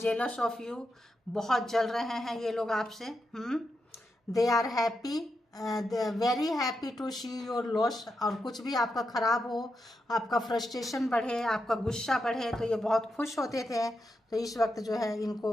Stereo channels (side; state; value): both; normal; correlation 0.86